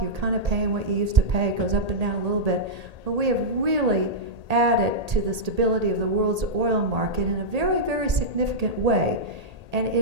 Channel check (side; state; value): left; late; 1.8 ms